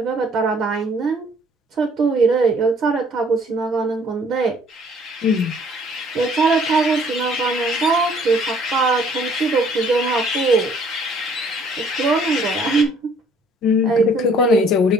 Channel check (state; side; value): normal; both; correlation 0.59